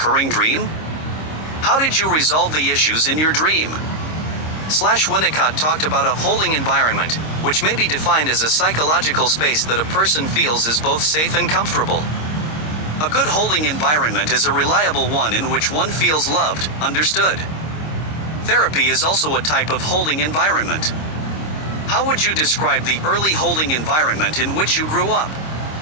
dream? How did you resolve the issues in your dream? Winnicott talked about a holding environment, which may be defined as a psychological space that a person feels is both safe and comfortable. A good holding environment is a reliable one in which one feels loved, understood. Therapy is also a type of holding environment. How would you describe the early holding environment in which you grew up?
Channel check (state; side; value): late; right; 26 ms